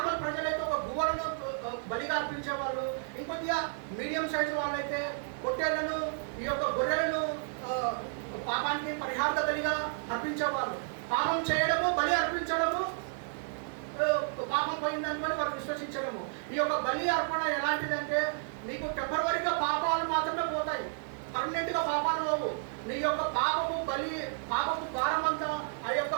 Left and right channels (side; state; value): left; silent; digital silence